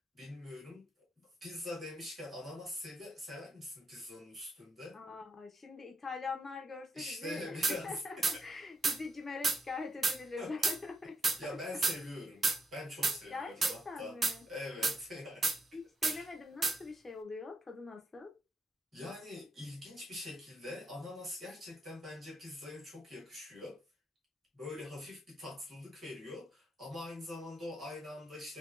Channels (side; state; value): both; normal; correlation 0.81